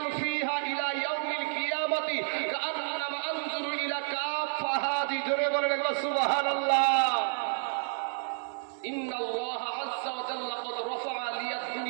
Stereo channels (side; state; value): left; silent; digital silence